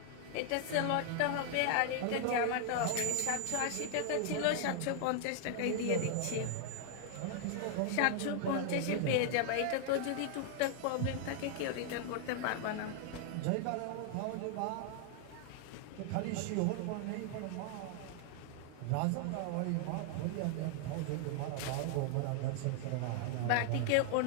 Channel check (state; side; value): different; both; correlation 0.00